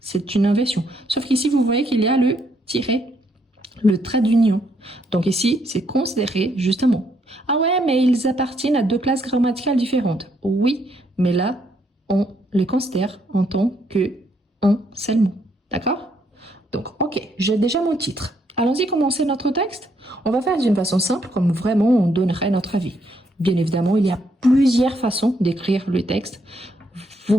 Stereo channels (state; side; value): normal; both; correlation 0.73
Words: une inversion. Sauf qu'ici, vous voyez qu'il y a le tiret, le trait d'union. Donc ici, c'est considéré justement. Ah ouais, mais ils appartiennent à 2 classes grammaticales différentes. Oui, mais là, on les considère en tant qu'un seul mot. D'accord? Donc, ok, j'ai déjà mon titre. Allons-y commencer notre texte. On va faire d'une façon simple, comme vraiment on donnerait notre avis. Bien évidemment, il y a plusieurs façons d'écrire le texte. Vous